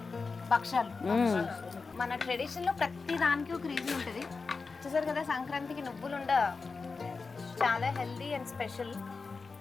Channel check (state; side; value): quieter; right; 4.4 dB